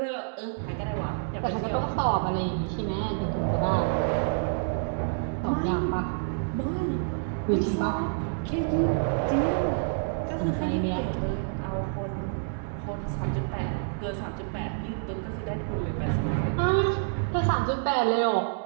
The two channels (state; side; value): silent; left; digital silence